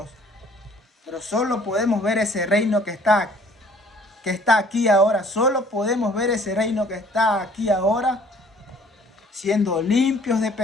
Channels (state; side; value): normal; both; correlation 0.56